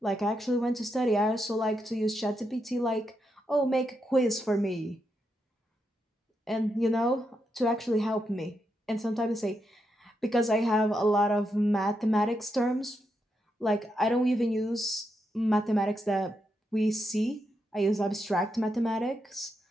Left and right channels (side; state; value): both; normal; correlation 0.83